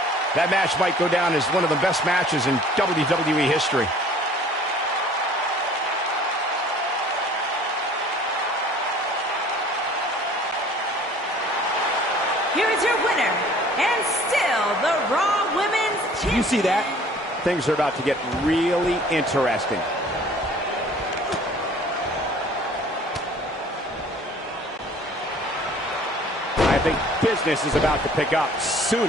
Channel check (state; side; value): normal; both; correlation 0.51